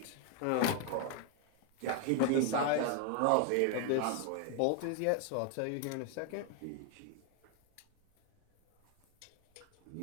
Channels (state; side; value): different; both; correlation 0.00